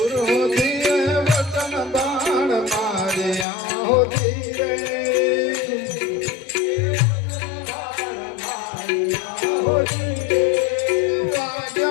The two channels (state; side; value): drops out; right; at 3.5 s